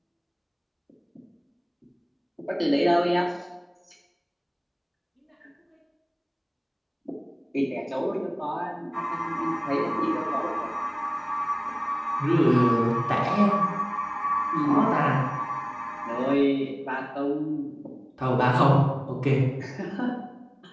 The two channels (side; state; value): both; identical; correlation 1.00